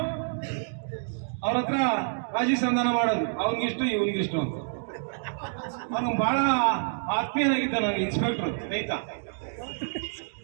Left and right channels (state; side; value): silent; left; digital silence